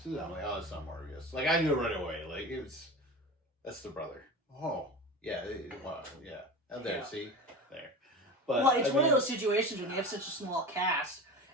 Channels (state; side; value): normal; both; correlation 0.30